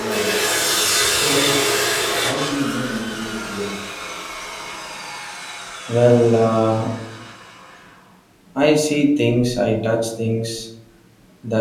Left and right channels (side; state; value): both; identical; correlation 1.00